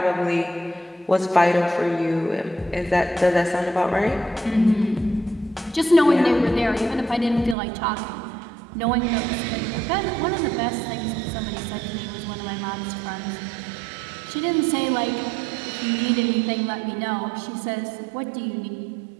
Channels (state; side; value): drops out; left; at 7.6 s